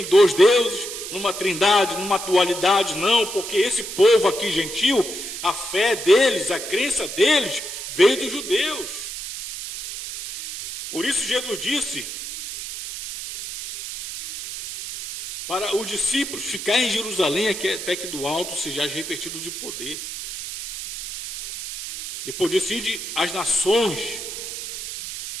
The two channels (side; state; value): right; noise; hiss, 8 dB below the sound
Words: dois deuses, numa trindade, numa dualidade, não, porque esse povo aqui gentil, a fé deles, a crença deles, veio dos judeus. Por isso Jesus disse para os discípulos ficarem em Jerusalém até que do alto sejais revestidos de poder. Depois disso, ide às nações,